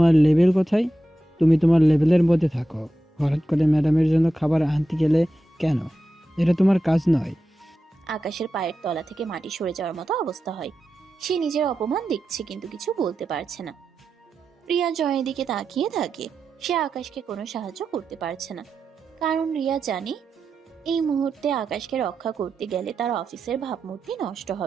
লেভেল কোথায়? তুমি তোমার লেভেলের মধ্যে থাকো। হঠাৎ করে ম্যাডামের জন্য খাবার আনতে গেলে কেন? এটা তোমার কাজ নয়। আকাশের পায়ের তলা থেকে মাটি সরে যাওয়ার মতো অবস্থা হয়। সে নিজের অপমান দেখছে কিন্তু কিছু বলতে পারছে না। রিয়া জয়ের দিকে তাকিয়ে থাকে। সে আকাশকে কোনো সাহায্য করতে পারছে না, কারণ রিয়া জানে এই মুহূর্তে আকাশকে রক্ষা করতে গেলে তার অফিসের ভাবমূর্তি নষ্ট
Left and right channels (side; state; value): both; normal; correlation 0.90